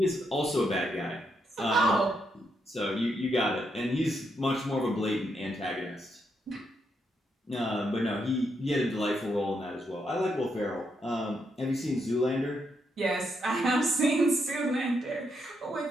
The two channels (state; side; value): normal; both; correlation 0.79